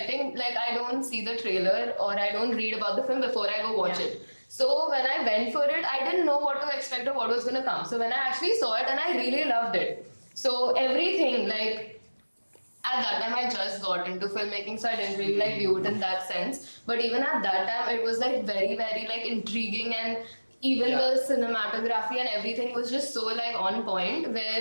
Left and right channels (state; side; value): inverted; both; correlation -1.00